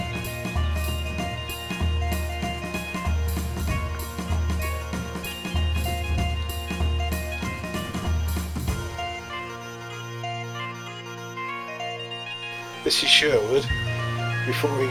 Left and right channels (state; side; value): identical; both; correlation 1.00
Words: This is Sherwood before he